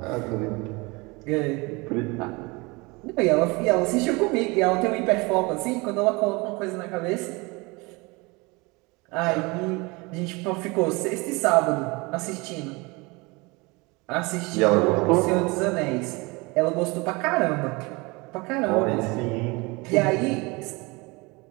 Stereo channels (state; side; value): quieter; left; 25.8 dB